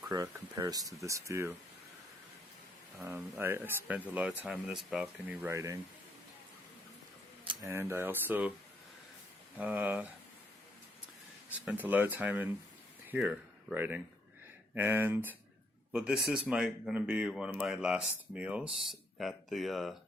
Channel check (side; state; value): both; normal; correlation 0.71